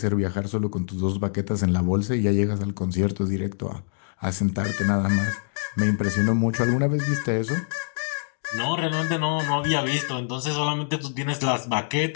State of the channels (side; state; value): right; silent; 62 dB below the other